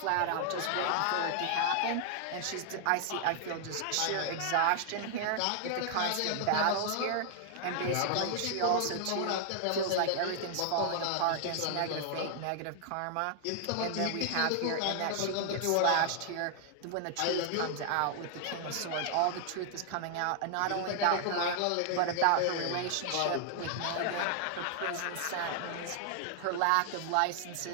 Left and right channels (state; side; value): different; both; correlation 0.00